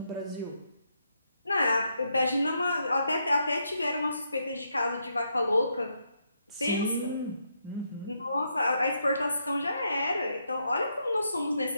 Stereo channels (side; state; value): both; inverted; correlation -0.79